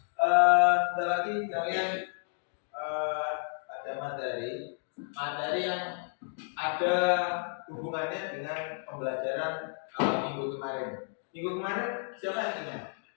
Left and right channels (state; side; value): silent; right; digital silence